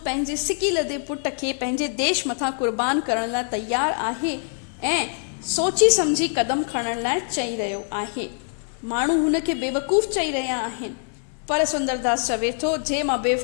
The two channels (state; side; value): silent; right; 58 dB below the other